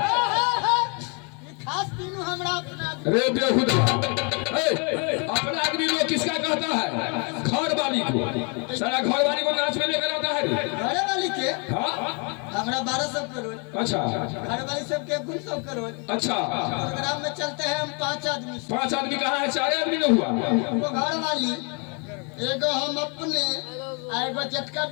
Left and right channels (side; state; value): right; quieter; 35.3 dB